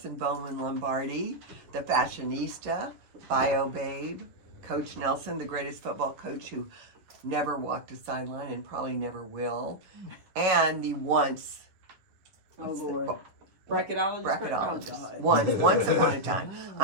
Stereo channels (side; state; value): left; late; 10 ms